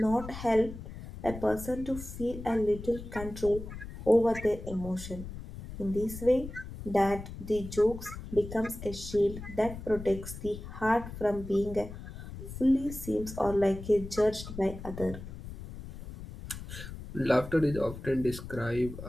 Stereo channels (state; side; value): noise; left; rumble, 11 dB below the sound